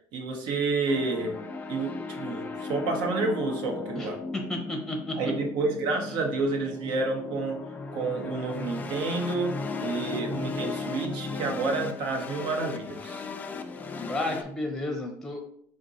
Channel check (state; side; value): normal; both; correlation 0.53